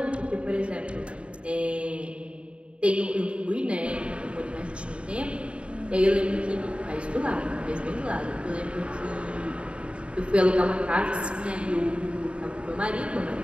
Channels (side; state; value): left; late; 0.058 ms